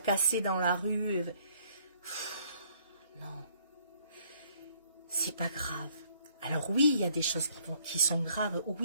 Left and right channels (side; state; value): both; inverted; correlation -0.63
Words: dans la rue. Non, c'est pas grave. Alors oui, il y a des choses qui sont graves.